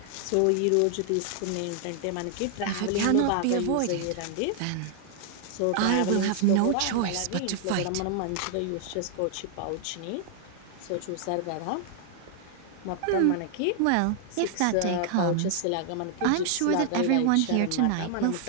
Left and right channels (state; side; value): different; both; correlation 0.00